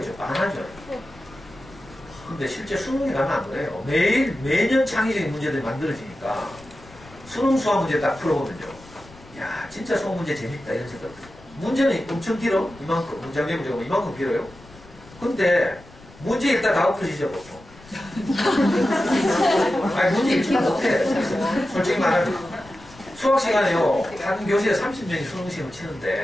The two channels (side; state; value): left; noise; rumble, 22 dB below the sound